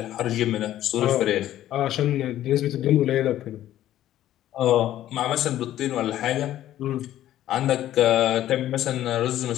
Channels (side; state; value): right; quieter; 12.9 dB